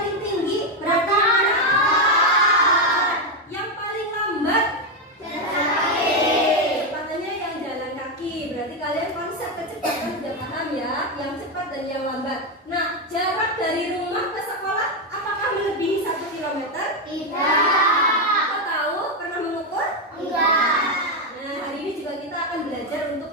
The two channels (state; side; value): normal; both; correlation 0.06